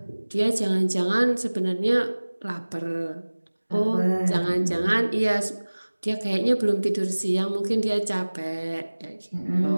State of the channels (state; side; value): inverted; both; correlation -1.00